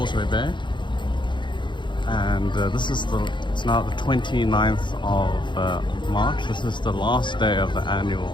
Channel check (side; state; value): right; late; 0.23 ms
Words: Bay, and it's now the 29th of March. This is the last day of the